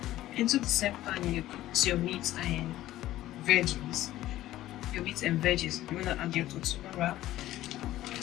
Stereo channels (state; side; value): quieter; right; 14.7 dB